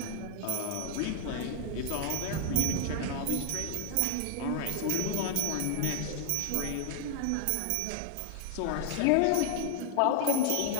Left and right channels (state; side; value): different; both; correlation 0.00